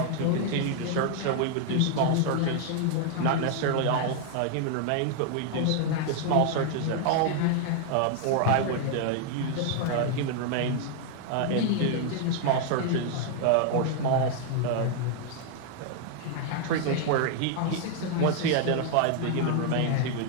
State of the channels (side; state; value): both; different; correlation 0.00